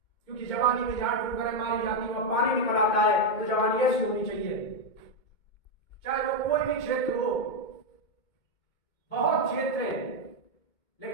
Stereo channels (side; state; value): right; late; 2.2 ms